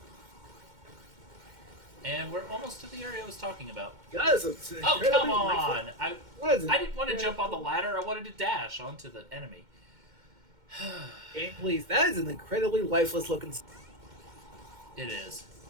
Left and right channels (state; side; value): late; left; 2.1 ms